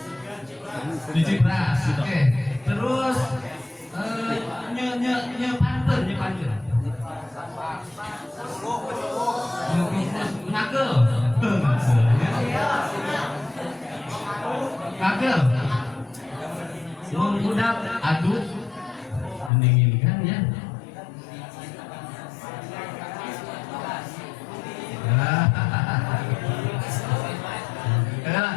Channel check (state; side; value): drops out; right; at 19.5 s